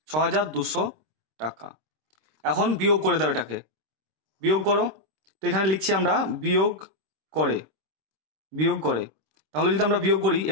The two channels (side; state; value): left; late; 26 ms